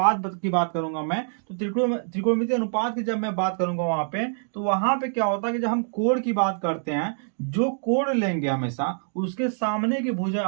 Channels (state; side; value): silent; left; digital silence